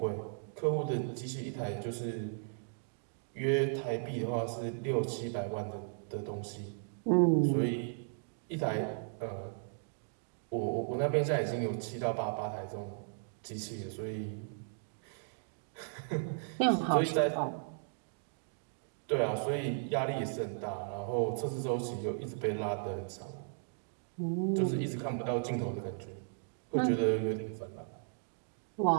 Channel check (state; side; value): silent; left; digital silence